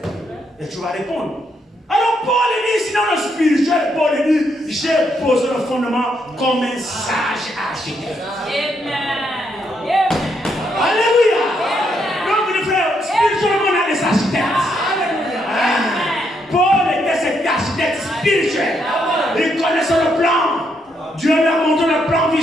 Et tu vas répondre. Alors Paul dit, sinon le spirituel, Paul dit, j'ai posé le fondement comme un sage architecte. Amen. Alléluia. Donc les frères, spirituellement on a des architectes. Paul était cet architecte spirituel. Il connaissait le plan. Dieu lui a montré le plan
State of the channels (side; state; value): both; normal; correlation 0.76